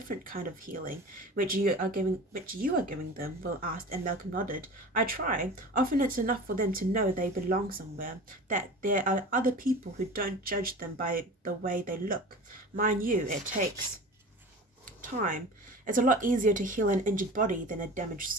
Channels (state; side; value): normal; both; correlation 0.36